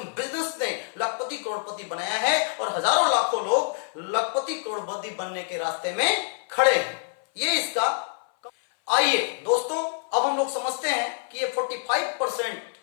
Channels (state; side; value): silent; right; 57 dB below the other